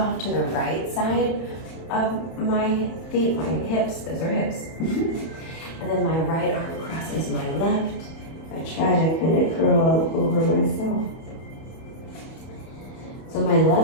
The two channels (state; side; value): late; right; 31 ms